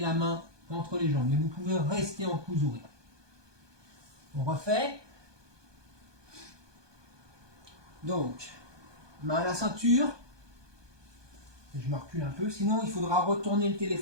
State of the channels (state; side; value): late; left; 1.2 ms